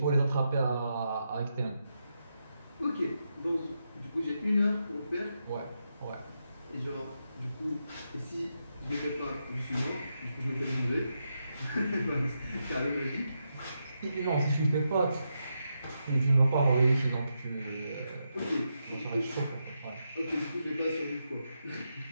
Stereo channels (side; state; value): both; inverted; correlation -0.84